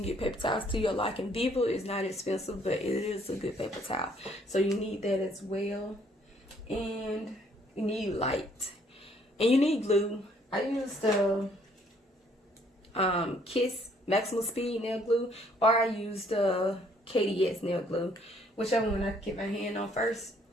get paper towels to your liking. Viva is not expensive, but it is a good paper towel. So you need that as well. And you need light. And you need glue. I use the Kiss Maximum Speed nail glue, or I use the KDS nail glue, whichever one I can get my hand on first.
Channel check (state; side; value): normal; both; correlation 0.64